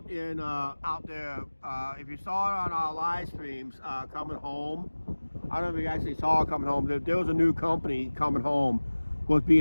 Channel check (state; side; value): inverted; both; correlation -1.00